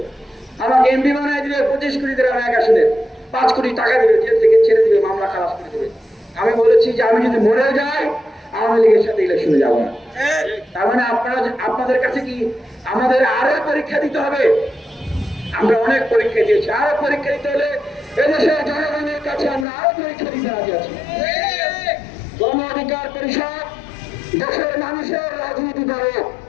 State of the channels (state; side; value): drops out; right; at 19.7 s